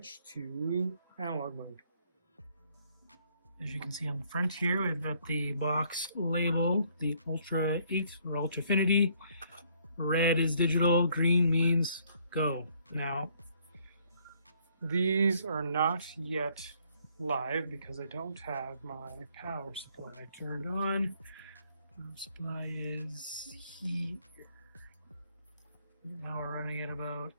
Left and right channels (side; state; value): both; inverted; correlation -0.66